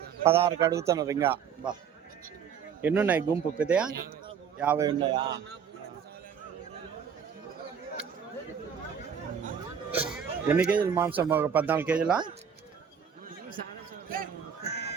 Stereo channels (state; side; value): quieter; left; 7.4 dB